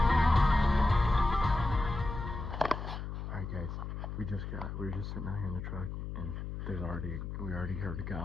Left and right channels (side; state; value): left; noise; hum, 6 dB below the sound